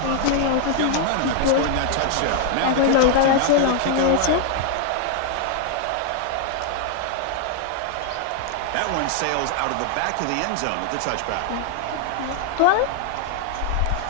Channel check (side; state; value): both; different; correlation 0.00